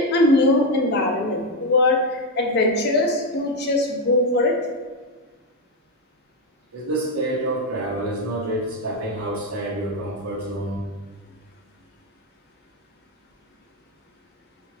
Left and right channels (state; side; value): normal; both; correlation 0.07